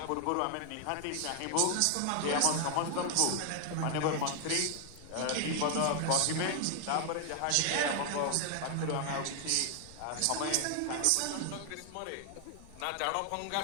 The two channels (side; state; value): both; different; correlation 0.00